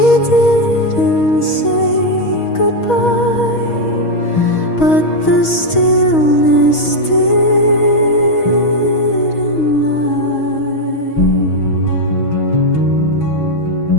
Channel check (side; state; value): right; late; 6.3 ms